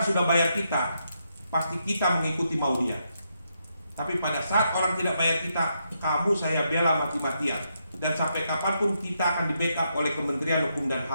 sudah bayar kita, pasti kita mengikuti mau dia. Tapi pada saat orang tidak bayar kita, kamu saya bela mati-matian. Dan sampai kapanpun kita akan di-backup oleh Kementerian Hukum dan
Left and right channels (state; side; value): inverted; both; correlation -0.80